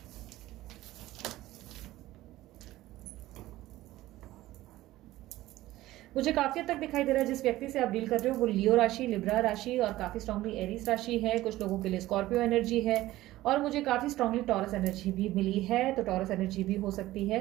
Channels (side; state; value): left; quieter; 16.3 dB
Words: मुझे काफी हद तक दिखाई दे रहा है जिस व्यक्ति से आप डील कर रहे हो वो लियो राशि, लिब्रा राशि और काफी स्ट्रांगली एरीज राशि है। कुछ लोगों के लिए स्कॉर्पियो एनर्जी है और मुझे काफी स्ट्रांगली टॉरस एनर्जी भी मिली है, तो टॉरस एनर्जी भी हो सकती